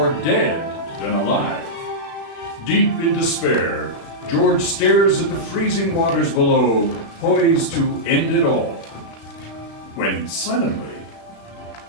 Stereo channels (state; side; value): late; right; 36 ms